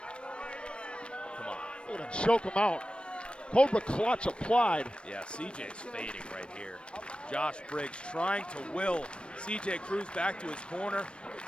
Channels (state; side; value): late; right; 0.056 ms